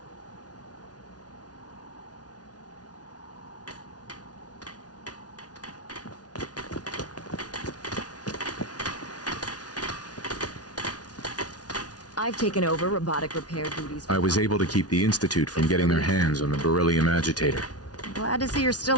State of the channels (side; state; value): right; late; 0.69 ms